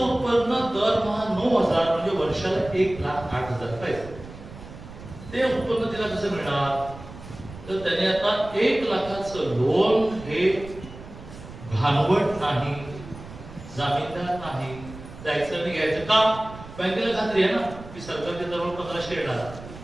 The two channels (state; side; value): noise; right; rumble, 15 dB below the sound